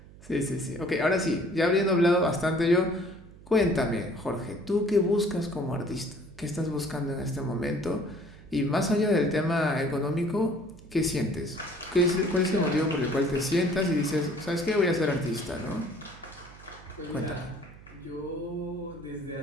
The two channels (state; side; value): noise; right; hum, 20 dB below the sound